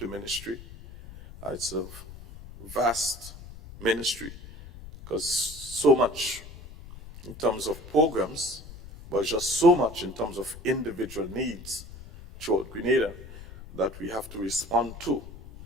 ministry. It's a vast ministry, because so much in terms of programs, but just so much in terms of individual needs throughout Grenada that we have to respond to.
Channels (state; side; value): noise; left; rumble, 15 dB below the sound